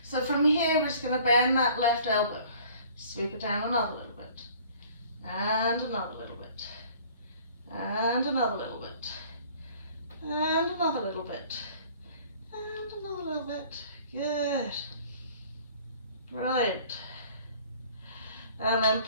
So from here, we're just going to bend that left elbow. Sweep it down another little bit. And another little bit. And another little bit. And another little bit. And another little bit. Good. Brilliant. And then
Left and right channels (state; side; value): inverted; both; correlation -0.52